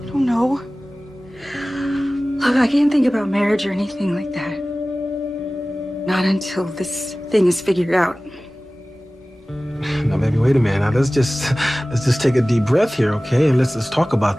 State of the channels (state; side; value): normal; both; correlation 0.97